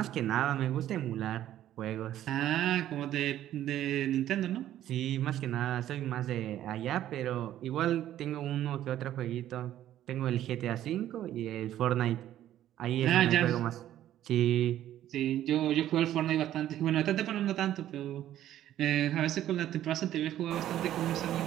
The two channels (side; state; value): left; quieter; 12.3 dB